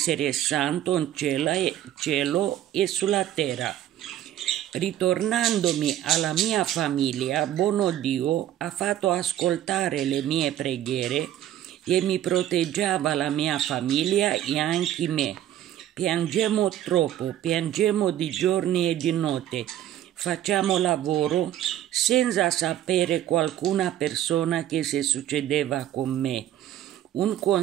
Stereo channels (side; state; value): left; quieter; 11.9 dB